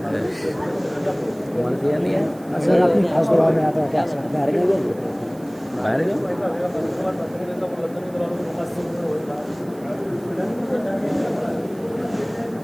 دیا نہیں ہے سر اپنی خاص دعا میں آتا ہے کیا سر باہر گئے باہر گئے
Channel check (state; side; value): noise; right; hiss, 25 dB below the sound